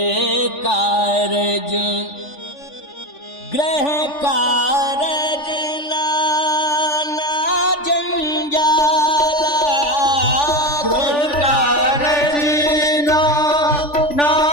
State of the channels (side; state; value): right; late; 3.4 ms